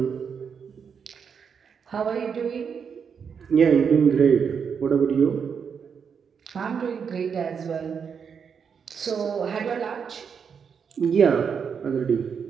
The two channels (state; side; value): quieter; left; 6.7 dB